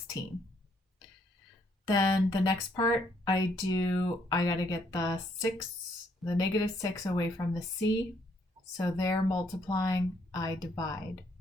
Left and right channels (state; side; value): normal; both; correlation 0.70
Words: Then the next part I got to get the negative 6 away from the c. So they're multiplying, I divide.